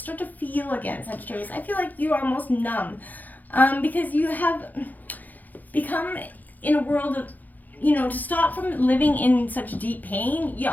to feel again, Sagittarius. I feel like you are almost numb because you have become in a world of, to stop from living in such deep pain, you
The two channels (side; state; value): right; late; 0.083 ms